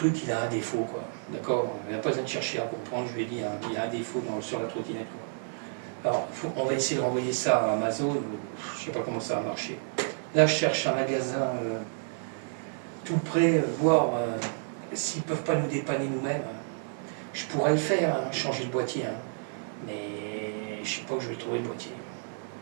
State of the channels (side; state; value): left; silent; digital silence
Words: il a un défaut, quoi. D'accord. Il n'y a pas besoin de chercher à comprendre, je lui ai dit, hein, il y a un défaut sur la trottinette, quoi. Alors on va essayer de renvoyer ça à Amazon, je ne sais pas comment ça va marcher. Là je cherche un magasin tout près, voir s'ils ne peuvent pas nous dépanner nous-mêmes. Je pourrais le faire, hein, changer le boîtier, hein, mais je ne sais pas où je vais trouver le boîtier.